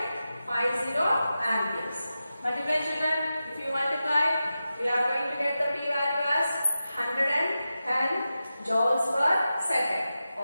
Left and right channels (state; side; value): inverted; both; correlation -0.92